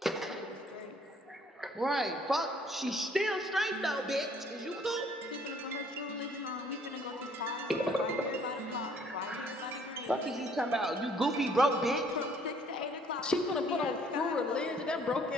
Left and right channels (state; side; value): normal; both; correlation 0.60